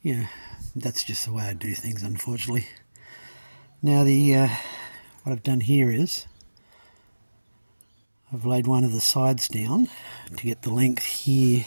Yeah, that's just the way I do things, unfortunately. Now what I've done here is I've laid one of the sides down to get the length here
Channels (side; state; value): both; inverted; correlation -1.00